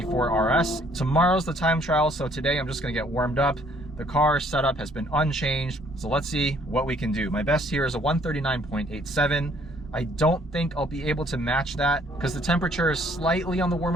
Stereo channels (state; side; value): normal; both; correlation 0.62